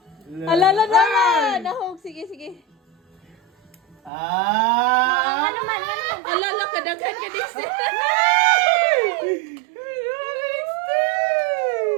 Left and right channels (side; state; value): left; drops out; at 4.1 s